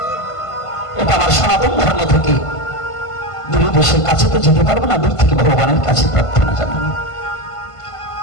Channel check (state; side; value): late; right; 1.5 ms